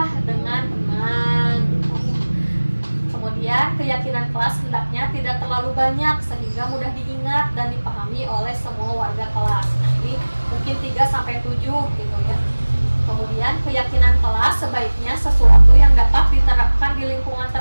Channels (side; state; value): both; inverted; correlation -1.00